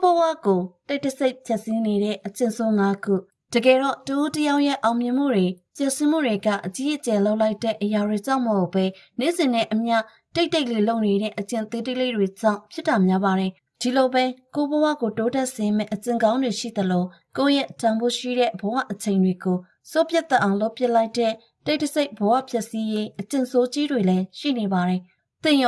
ဘဝကိုတိတ်တဆိတ်ဖြတ်စည်းနေတဲ့အကျင့်ဆိုး၅ခုတကယ်တော့တူတယောက်ရဲ့အောင်မြင်မှုတွေကျဆင်းမှုတွေကအကြီးအကျယ်လောက်လိုက်တဲ့အရာတွေကြောင့်မဟုတ်ပဲနေ့စဉ်နဲ့အမျှတိတ်လေးလုံနေတဲ့အကျင့်သေးသေးလေးတွေကြောင့်ဖြစ်တာများပါတယ်ဒီလိုပဲကိုဘဝကိုတိုးတက်စေမယ့်အကျင့်ကောင်းတွေရှိသလိုကိုယ့်ရဲ့တန်ဖိုးရှိတဲ့ဘဝအချိန်တွေကိုစိုးပြတ်သက်အောင်လုပ်ပစ်လိုက်တဲ့တိတ်တဆိတ်ဘဝဖြတ်စည်းရေးအကျင့်ဆိုးကြီးတွေလည်းရှိနေပါတယ်သင်ရ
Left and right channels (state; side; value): identical; both; correlation 1.00